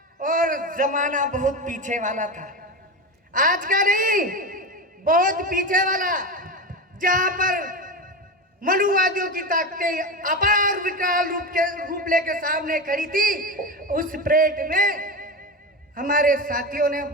और जमाना बहुत पीछे वाला था, आज का नहीं, बहुत पीछे वाला, जहां पर मनुवादियों की ताकतें अपार विकराल रूप लेकर सामने खड़ी थी। उस परेड में हमारे साथियों ने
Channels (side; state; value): both; normal; correlation 0.21